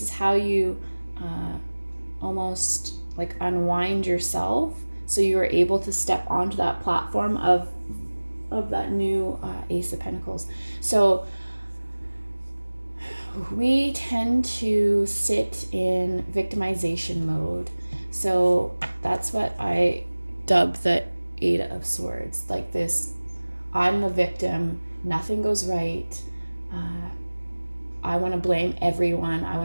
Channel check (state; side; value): inverted; both; correlation -1.00